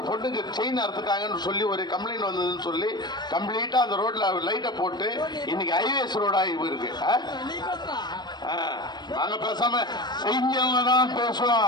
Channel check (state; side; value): late; right; 0.21 ms